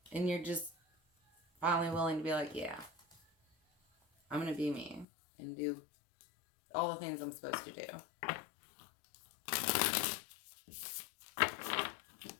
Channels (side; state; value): right; drops out; at 5.1 s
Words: And you're just finally willing to be like, yeah, I'm going to be me and do all the things I'm supposed to do.